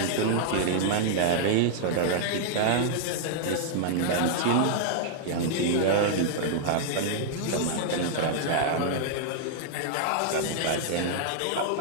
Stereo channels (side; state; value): both; different; correlation -0.01